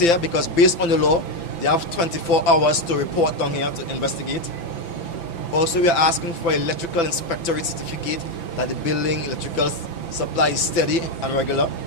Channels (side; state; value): right; late; 5.9 ms